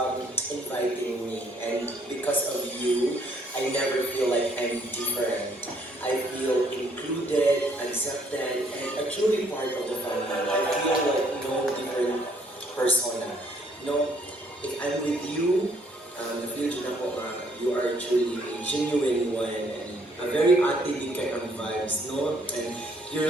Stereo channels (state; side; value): normal; both; correlation 0.66